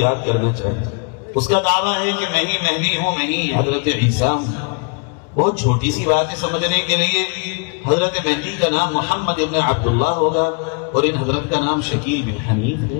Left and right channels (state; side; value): quieter; right; 35.9 dB